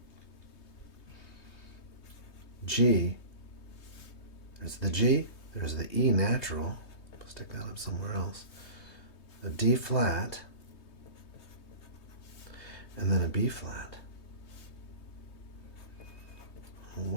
G, there's the G, there's the E natural, stick that up somewhere else, a D flat, and then a B flat.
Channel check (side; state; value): right; late; 3.2 ms